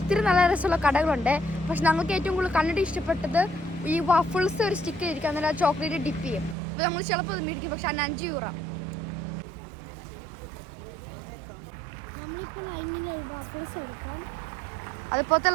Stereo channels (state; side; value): drops out; left; at 6.6 s